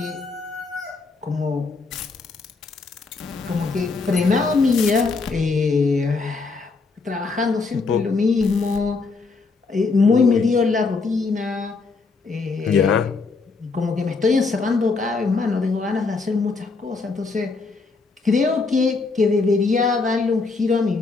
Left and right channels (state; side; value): quieter; right; 4.2 dB